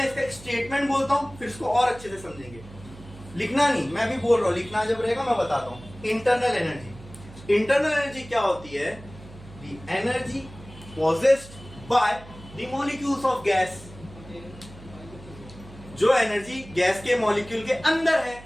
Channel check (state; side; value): noise; right; hum, 18 dB below the sound